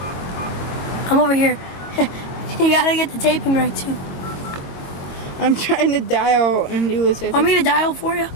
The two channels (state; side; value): late; right; 22 ms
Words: I'm over here. You gotta get the taping right too. I'm trying to dial and do this. Want me to dial for you?